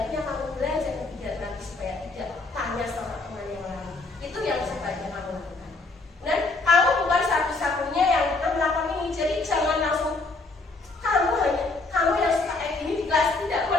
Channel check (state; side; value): quieter; right; 3.5 dB